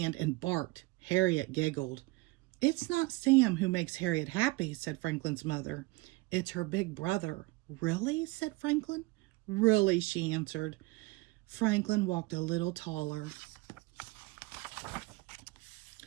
and barked. Harriet giggled. "It's not Sam who makes Harriet happy," said Franklin's mother. "It's her big brother." "Really?" said Franklin. "Really," she answered. Franklin walked a little taller.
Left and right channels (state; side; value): quieter; left; 22.1 dB